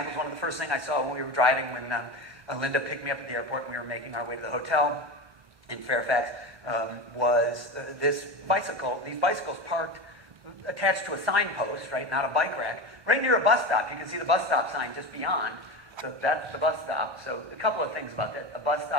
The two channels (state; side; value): late; left; 1.2 ms